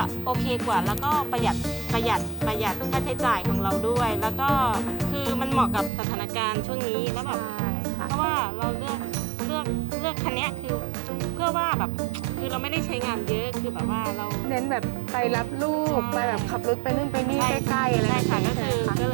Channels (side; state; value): left; drops out; at 5.9 s